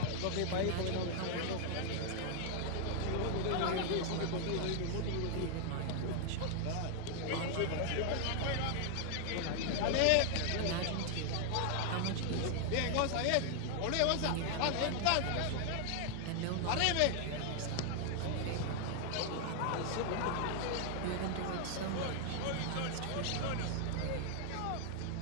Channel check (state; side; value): different; both; correlation 0.00